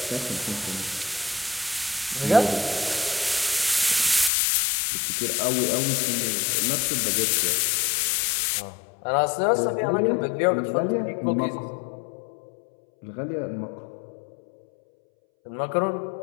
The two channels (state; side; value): drops out; right; at 4.3 s